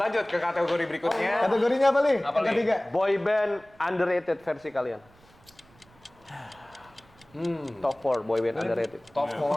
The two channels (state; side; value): noise; right; rumble, 29 dB below the sound